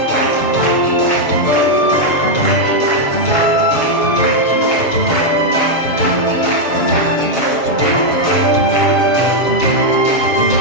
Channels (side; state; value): right; late; 7.0 ms